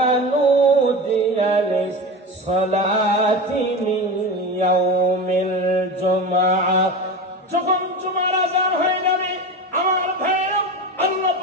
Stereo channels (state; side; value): normal; both; correlation 0.26